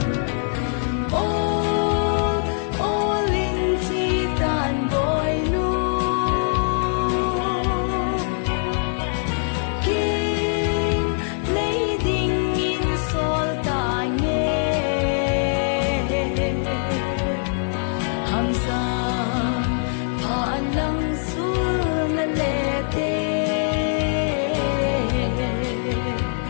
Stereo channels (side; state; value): right; silent; 64 dB below the other